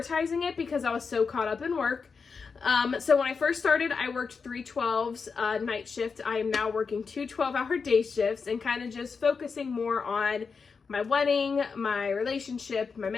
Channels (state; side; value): quieter; right; 5.2 dB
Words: it because I was so caught up in work. So when I first started, I worked 3 12s night shift. I am now working 2 12-hour day shifts and kind of just focusing more on my wedding, my relationship, my